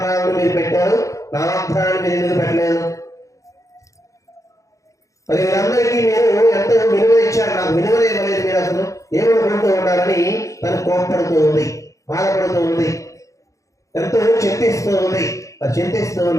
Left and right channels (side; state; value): right; late; 0.15 ms